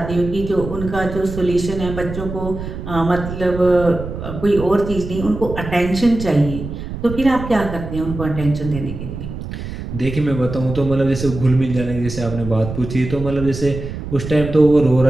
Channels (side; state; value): right; noise; rumble, 8 dB below the sound